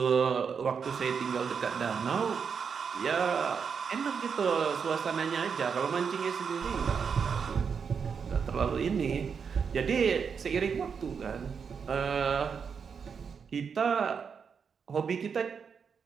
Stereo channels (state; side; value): quieter; left; 6.3 dB